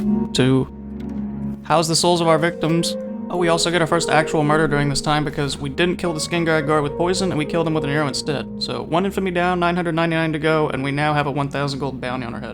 to house the souls of our victims. Oh, we also get our first actual murder during this time because we didn't kill the Skingrad guard with poison, and we killed him with an arrow instead. So 1 infamy down, 999 to go, and we now have a 1,000 gold bounty on our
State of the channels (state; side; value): identical; both; correlation 1.00